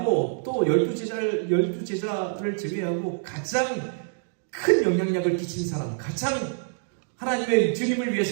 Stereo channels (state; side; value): silent; left; digital silence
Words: 또 12제자를 제외하고 가장 큰 영향력을 끼친 사람, 가장 하나님의 주님을